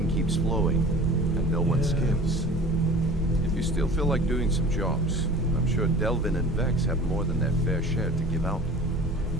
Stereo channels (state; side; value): normal; both; correlation 0.42